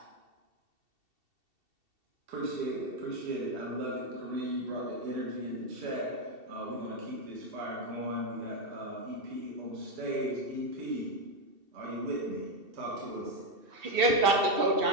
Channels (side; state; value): left; late; 2.7 ms